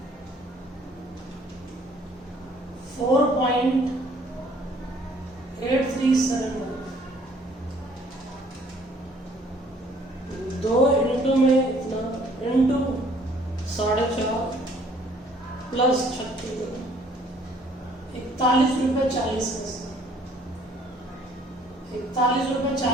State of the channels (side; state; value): both; normal; correlation 0.60